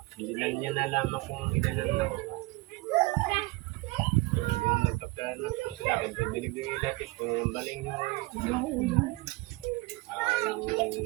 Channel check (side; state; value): left; quieter; 22.8 dB